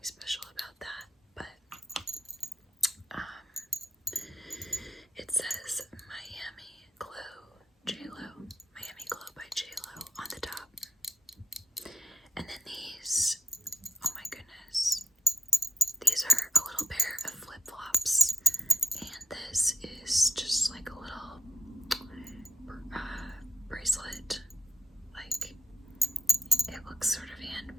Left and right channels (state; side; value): normal; both; correlation 0.72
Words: special about that, but it says Miami Glow J-Lo. Miami Glow by J-Lo on the top. And then these, oh my goodness, these are a little pair of flip-flops, and this is just like a little bracelet. Like, it looks sort of